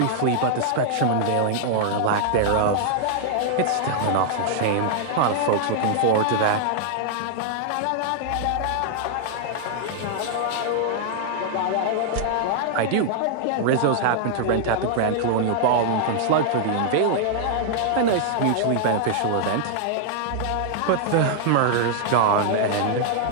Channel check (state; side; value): different; both; correlation -0.01